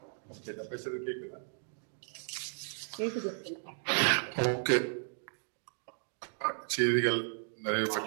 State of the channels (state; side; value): silent; left; digital silence